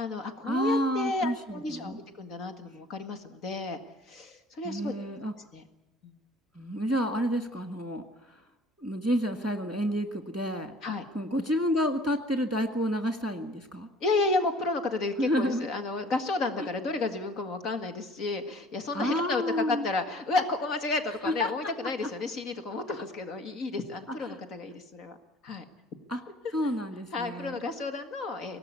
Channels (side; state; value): both; normal; correlation 0.51